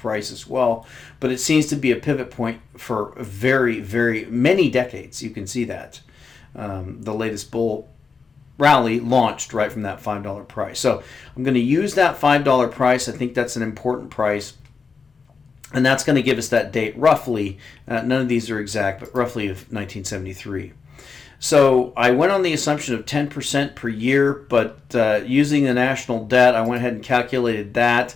as well. But it seems to be a pivot point for very, very many decades. You can see that. The latest bull rally launched right from that $5 price. So I'm going to use that $5 price. I think that's an important price. And that's going to give us that date roughly, none of these are exact, but roughly of 1973. So I went on the assumption of 10% per year, but using the national debt, I went ahead and calculated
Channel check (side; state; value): right; quieter; 5.2 dB